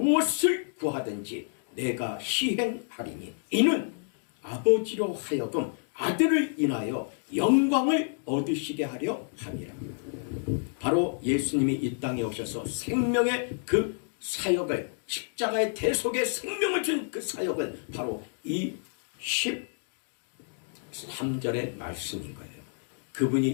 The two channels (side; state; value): right; silent; digital silence